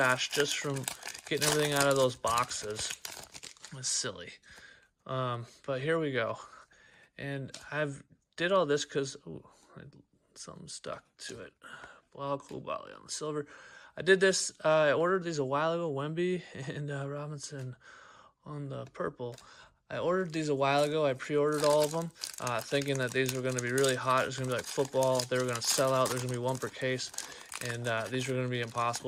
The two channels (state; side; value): identical; both; correlation 1.00